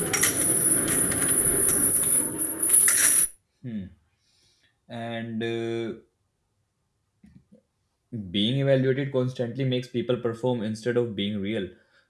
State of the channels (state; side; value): identical; both; correlation 1.00